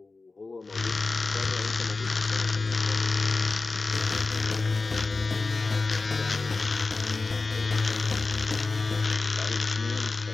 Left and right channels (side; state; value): right; quieter; 3.8 dB